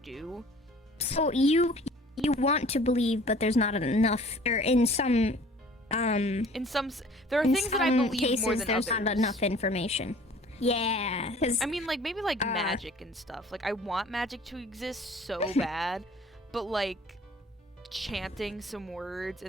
So you want to believe, but there's not enough, or in some there are things that I believe cases, more than there's others. Not enough information. Yeah, I mean, maybe magic and stuff. I want magic to exist so bad, but chanting some words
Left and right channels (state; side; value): normal; both; correlation 0.50